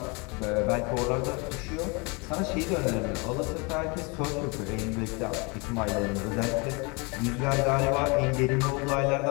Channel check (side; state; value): right; quieter; 29.8 dB